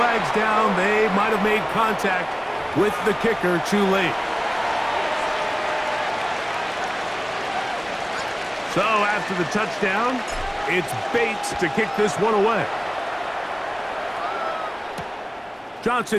down. They might have made contact with the kicker too late. So after the touchdown, it's Bates to kick this one away.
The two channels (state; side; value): identical; both; correlation 1.00